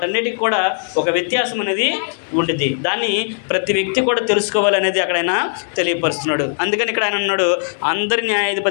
కూడా ఒక వ్యత్యాసం అనేది ఉంటుంది. దాన్ని ప్రతి వ్యక్తి కూడా తెలుసుకోవాలనేది అక్కడైనా తెలియపరుస్తున్నాడు. అందుకని ఇక్కడ ఆయన అన్నాడు, అందరి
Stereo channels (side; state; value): right; silent; 67 dB below the other